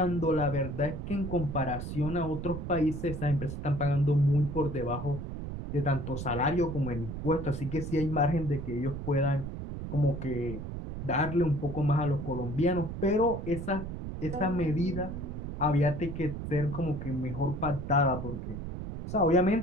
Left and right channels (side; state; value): right; noise; rumble, 7 dB below the sound